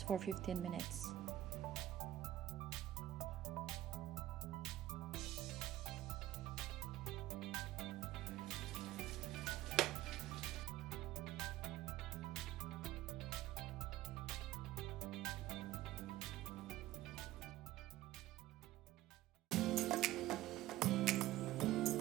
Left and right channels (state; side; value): quieter; left; 14.7 dB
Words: for 15 minutes.